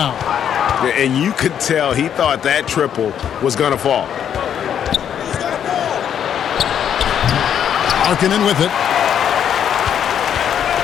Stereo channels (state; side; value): quieter; right; 9.0 dB